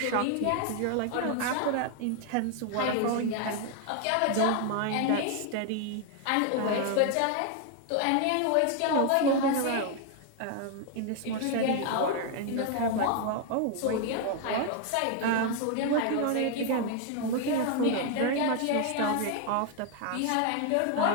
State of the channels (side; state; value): both; different; correlation 0.00